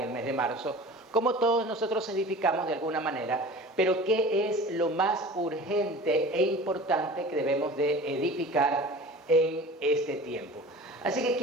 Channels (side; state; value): both; normal; correlation 0.39